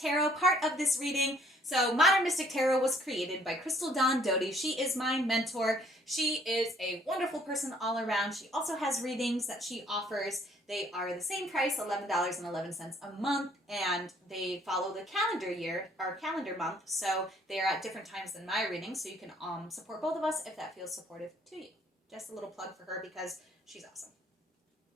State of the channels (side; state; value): both; normal; correlation 0.61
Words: part of this reading. So Modern Mystic Tarot was created by Crystal Dawn Doty. She is my mentor. She is a wonderful person all around. She also has readings that she offers. They are the same price, $11.11 a month, and they follow the calendar year, or calendar month, so they are at different times than my readings, so you can support both of us if that feels supportive to you. Just a little plug for her because she's awesome.